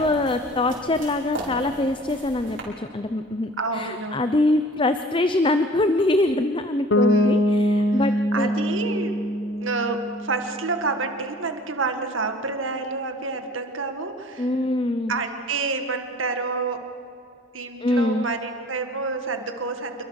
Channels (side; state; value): both; normal; correlation 0.47